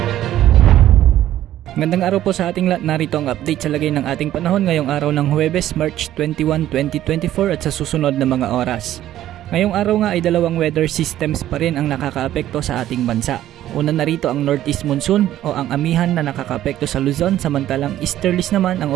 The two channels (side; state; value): left; quieter; 12.9 dB